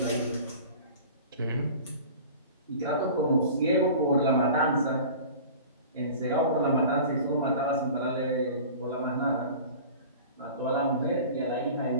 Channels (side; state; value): both; inverted; correlation -0.40